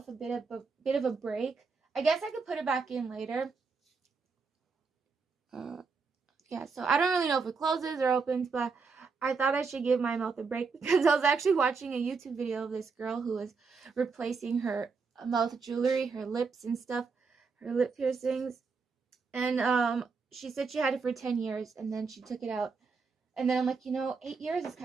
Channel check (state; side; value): quieter; left; 4.9 dB